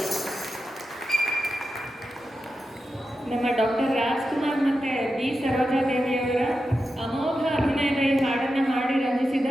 ನಮ್ಮ ಡಾಕ್ಟರ್ ರಾಜ್ಕುಮಾರ್ ಮತ್ತೆ ಬಿ ಸರೋಜಾದೇವಿಯವರ ಅಮೋಘ ಅಭಿನಯದ ಈ ಹಾಡನ್ನು ಹಾಡಿ ರಂಜಿಸಿದ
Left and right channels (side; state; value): both; normal; correlation 0.90